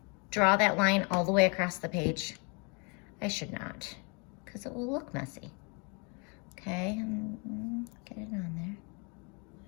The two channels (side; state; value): right; quieter; 33.1 dB